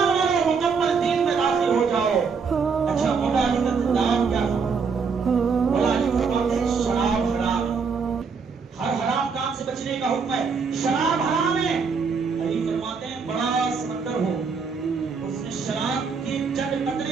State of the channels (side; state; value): left; quieter; 5.4 dB